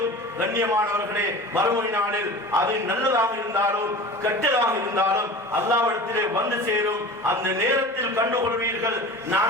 கண்ணியமானவர்களே மறுமை நாளில் அது நல்லதாக இருந்தாலும் கெட்டதாக இருந்தாலும் அல்லாஹ்விடத்திலே வந்து சேரும். அந்த நேரத்தில் கண்டுகொள்வீர்கள்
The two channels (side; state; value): both; normal; correlation 0.37